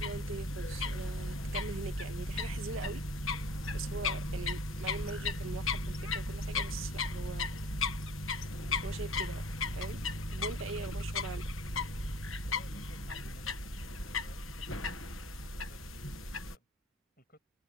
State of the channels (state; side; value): normal; both; correlation 0.45